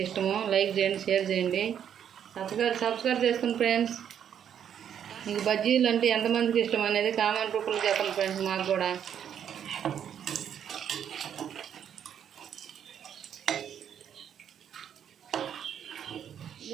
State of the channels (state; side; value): quieter; left; 9.0 dB